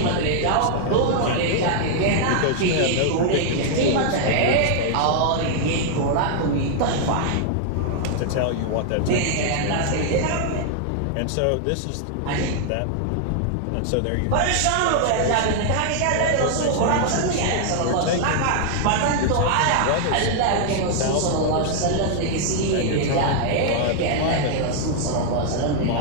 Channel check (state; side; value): different; both; correlation 0.00